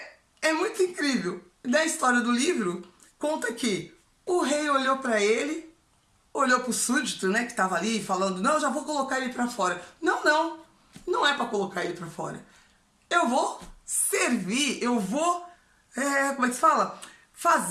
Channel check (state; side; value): identical; both; correlation 1.00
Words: muito incrível. Na história do livro, conta que o rei olhou para ele, olhou para o súdito, né, que estava ali falando, não, já vou colocar ele para fora. Não é para colocar ele para fora. Eu vou servir, eu vou, como é que se fala?